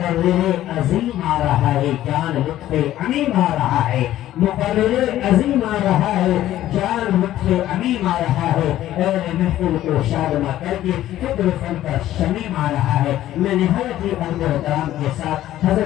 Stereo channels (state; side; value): quieter; right; 13.5 dB